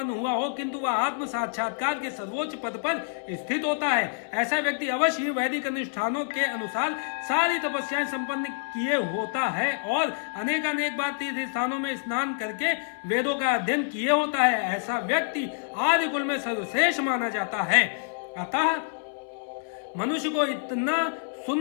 हुआ हो, किंतु वह आत्म साक्षात्कार के सर्वोच्च पद पर स्थित होता है। ऐसा व्यक्ति अवश्य ही वैदिक अनुष्ठानों के अनुसार सारी तपस्याएं संपन्न किए होता है और अनेक बार तीर्थ स्थानों में स्नान करके वेदों का अध्ययन किए होता है। ऐसा व्यक्ति आदि कुल में सर्वश्रेष्ठ माना जाता है। अतः मनुष्य को इतना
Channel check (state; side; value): silent; right; 59 dB below the other